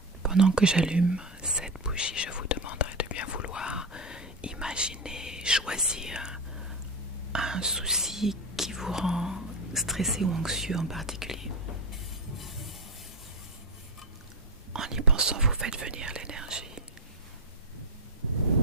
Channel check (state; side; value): normal; both; correlation 0.15